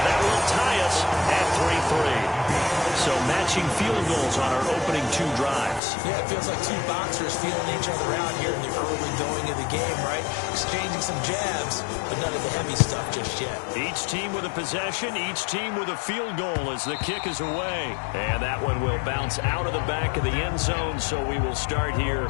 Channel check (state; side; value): drops out; right; at 5.8 s